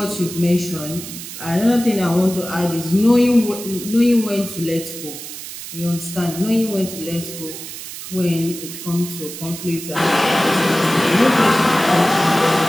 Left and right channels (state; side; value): noise; right; hiss, 11 dB below the sound